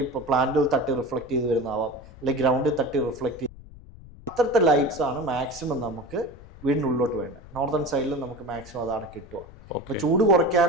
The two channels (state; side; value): noise; left; rumble, 19 dB below the sound